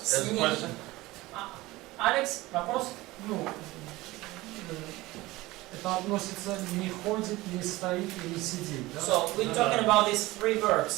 has a question? Алекс, вопрос? Ну, это относится не ходит, не стоит и не сидит, да? So we're talking about these 3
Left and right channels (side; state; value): left; quieter; 19.5 dB